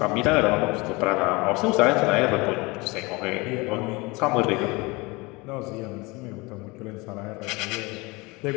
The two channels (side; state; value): right; quieter; 24.7 dB